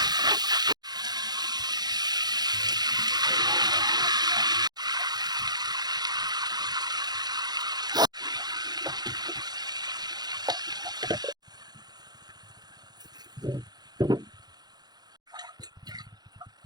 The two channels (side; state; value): left; late; 0.20 ms